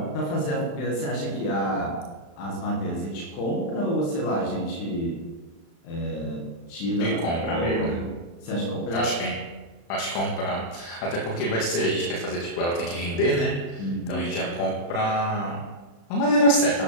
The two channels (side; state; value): right; late; 35 ms